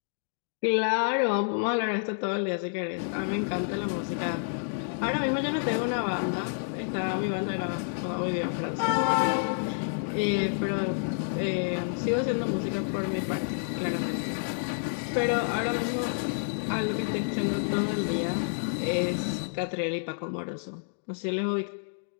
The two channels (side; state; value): right; silent; digital silence